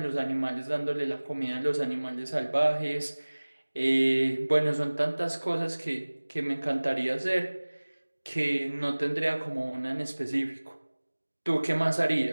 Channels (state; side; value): inverted; both; correlation -1.00